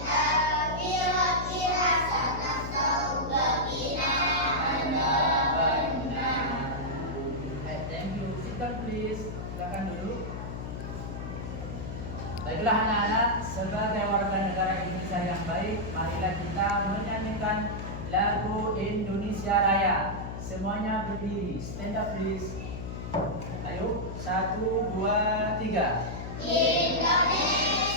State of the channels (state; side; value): noise; left; hum, 7 dB below the sound